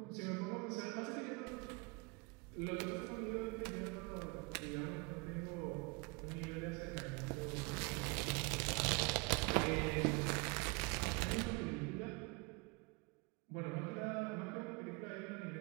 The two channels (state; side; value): quieter; left; 29.7 dB